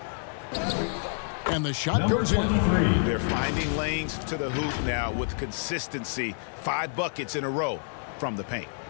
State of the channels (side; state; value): right; silent; 55 dB below the other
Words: And the shot Number goes in. 23. They're finding lanes to the hoop now with consistency. 5 buckets in a row from the paint.